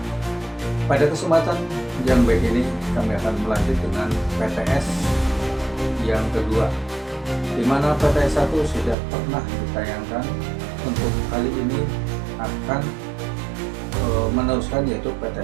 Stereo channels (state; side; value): drops out; left; at 9.0 s